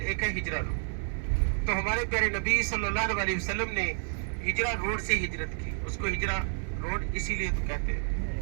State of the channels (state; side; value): silent; left; 58 dB below the other